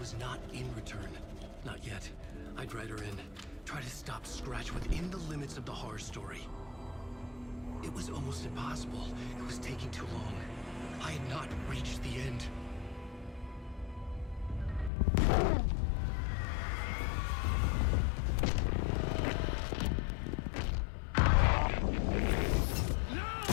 not in Return. Not yet. I'd write her in. Try to stop Scratch within the limits of the horror story. It was almost impossible. It was taking too long. I had not reached the end.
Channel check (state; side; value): drops out; right; at 14.9 s